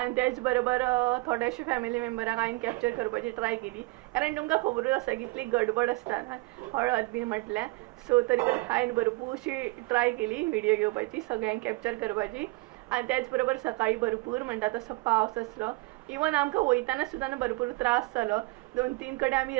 तेच बरोबर थोडेशे फॅमिली मेंबरांक हांवें कॅप्चर करपाची ट्राय केली. कारण तुमकां खबरूच आसा कितली गडबड आसता ना हळद बी म्हटल्यार. सो तरी पण हांवें भरपूरशी ट्राय केली व्हिडियो घेवपाची, सगळ्यांक कॅप्चर करपाची. आनी त्याच बरोबर सकाळी भरपूर म्हणटा तसो पावस आसलो. इवन आमकां वयताना सुद्दां भरपूर त्रास जालो. 2-3 कडेन आमी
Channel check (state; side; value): quieter; left; 23.6 dB